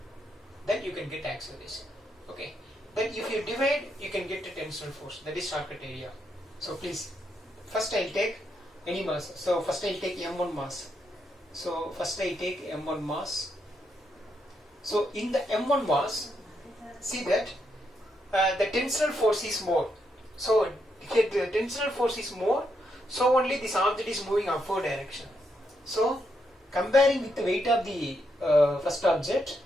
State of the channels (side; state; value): both; normal; correlation 0.79